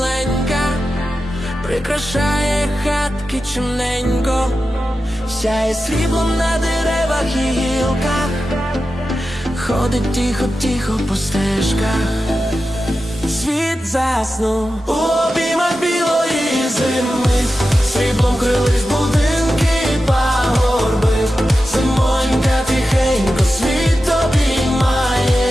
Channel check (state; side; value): normal; both; correlation 0.92